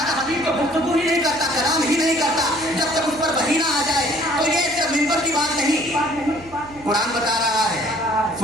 हबीब तो गुफ्तगू ही नहीं करता, कलाम ही नहीं करता जब तक उस पर वही ना आ जाए। तो ये सिर्फ मिंबर की बात नहीं, कुरान बता रहा है,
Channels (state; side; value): noise; right; hum, 21 dB below the sound